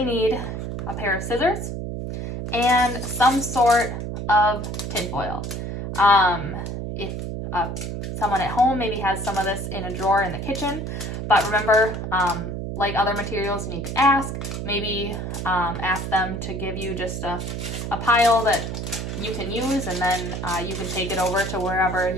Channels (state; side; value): noise; right; hum, 5 dB below the sound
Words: need a pair of scissors and some sort of tinfoil. If someone at home maybe has some of this in a drawer in the kitchen, but remember, like other materials, you need to ask. Maybe ask them to give you just a pile that you can use, and then you can take it over to wherever